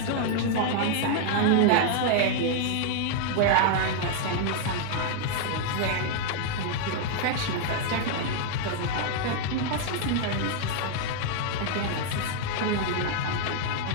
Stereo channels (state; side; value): different; both; correlation 0.00